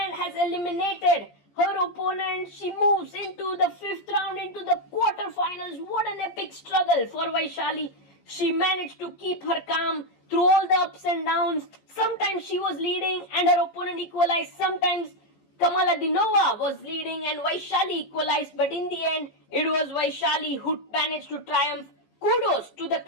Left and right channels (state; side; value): late; right; 14 ms